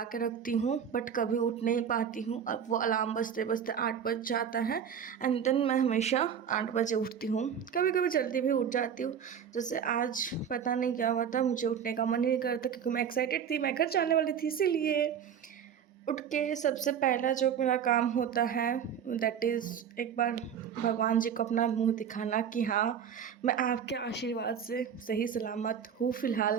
के रखती हूँ बट कभी उठ नहीं पाती हूँ। अब वो अलार्म बजते बजते 8 बज जाता है एंड देन मैं हमेशा 8 बजे उठती हूँ। कभी कभी जल्दी भी उठ जाती हूँ। जैसे आज पता नहीं क्या हुआ था, मुझे उठने का मन नहीं करता क्योंकि मैं एक्साइटेड थी, मैं घर जाने वाली थी। इसीलिए उठ के सबसे पहला जो मेरा काम होता है दैट इज़ एक बार भगवान जी को अपना मुंह दिखाना कि हाँ, मैं आपके आशीर्वाद से सही सलामत हूँ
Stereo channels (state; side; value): quieter; left; 8.1 dB